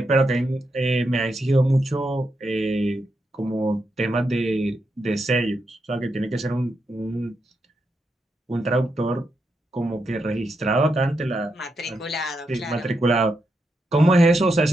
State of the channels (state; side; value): normal; both; correlation 0.84